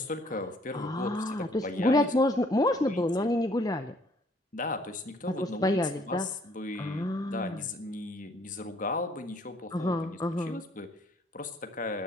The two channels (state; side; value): normal; both; correlation 0.62